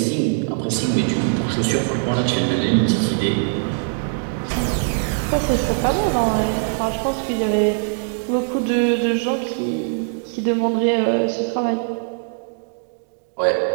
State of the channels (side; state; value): left; silent; digital silence